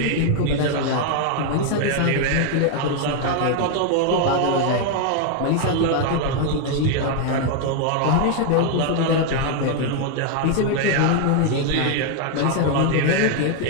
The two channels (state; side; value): different; both; correlation 0.00